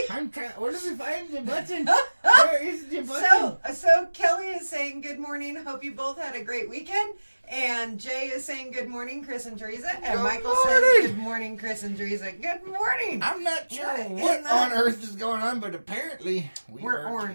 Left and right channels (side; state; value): both; inverted; correlation -1.00